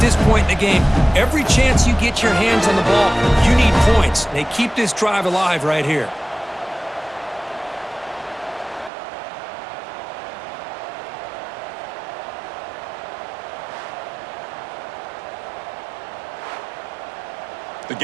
this point in the game. Every chance you get your hands on the ball, you need points. They keep this drive alive right here. The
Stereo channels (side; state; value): left; drops out; at 8.9 s